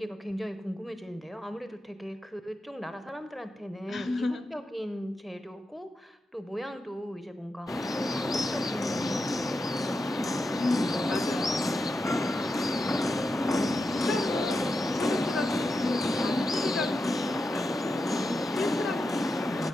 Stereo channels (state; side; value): normal; both; correlation 0.88